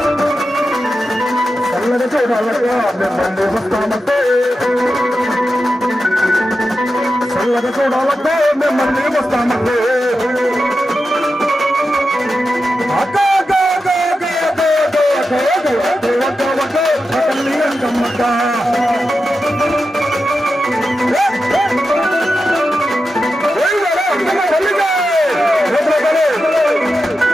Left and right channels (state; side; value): normal; both; correlation 0.90